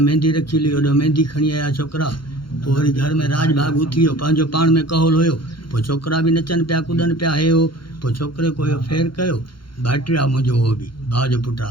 मेहंदी रखी हुई, होॾा मेहंदी खणी आया छोकिरा। पोइ वरी घर में राज भाग उथी वियो, पंहिंजो पाण में कहोल हुयो। पोइ छोकिरा बि नचनि पिया कुॾनि पिया, हे हो। पोइ छोकिरे को इहो फेर कयो, भाइटियो आहे मुंहिंजो, उहो बि भाउ जो पुटु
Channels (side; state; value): right; late; 0.73 ms